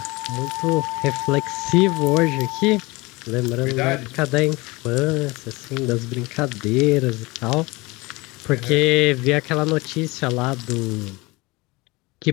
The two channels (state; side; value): quieter; right; 23.4 dB